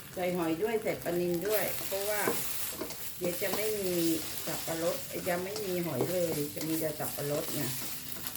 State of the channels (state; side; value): identical; both; correlation 1.00